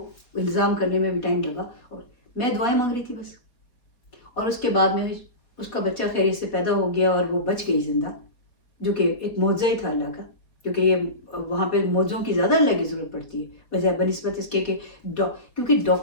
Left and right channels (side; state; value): right; late; 4.2 ms